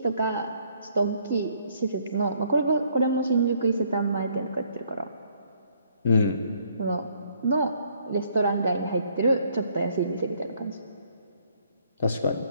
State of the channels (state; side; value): inverted; both; correlation -0.65